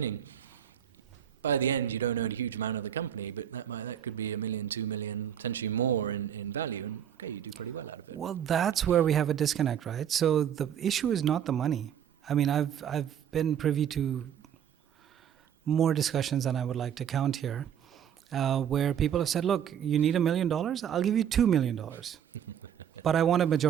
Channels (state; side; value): quieter; left; 9.2 dB